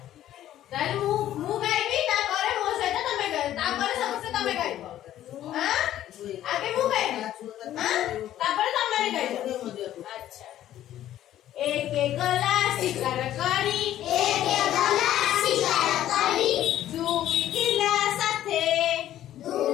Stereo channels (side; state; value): right; quieter; 12.5 dB